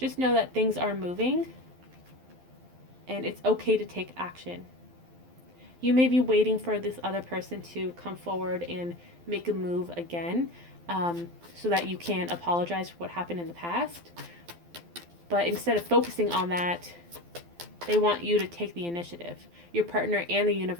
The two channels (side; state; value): left; late; 12 ms